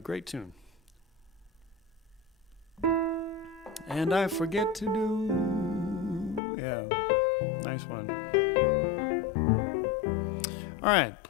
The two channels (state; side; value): drops out; right; at 6.4 s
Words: tune. And I Forget to Do. Yeah, nice one. All right,